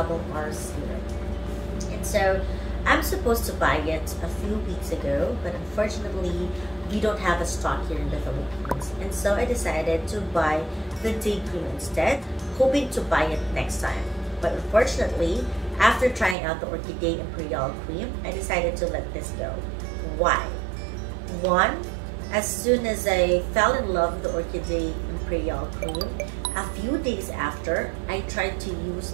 R serum. And so, I'm supposed to buy it a few weeks ago, but unfortunately, we don't have a stock here in the Philippines. And so I decided to buy the day cream instead, hoping to buy it next time. But unfortunately, after trying out the Orchidee Imperial cream, I decided to let this go. Why? One, as soon as I fell in love with the Orchidee Imperial cream, a few days after, I tried to use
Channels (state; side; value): drops out; left; at 16.4 s